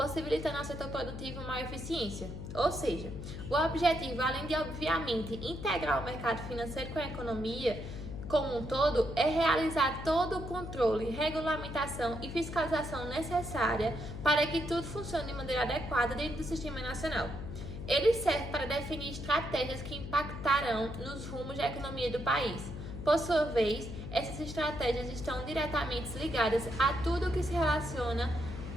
ao setor produtivo maior eficiência. Ou seja, o objetivo, além de obviamente integrar o mercado financeiro com a economia como um todo, é realizar todo o controle, regulamentação e fiscalização necessária para que tudo funcione de maneira adequada dentro do Sistema Nacional. Ele serve para definir estratégias que impactarão nos rumos da economia do país. Por sua vez, essas estratégias estão diretamente ligadas a tudo que se relaciona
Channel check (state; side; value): noise; left; hum, 8 dB below the sound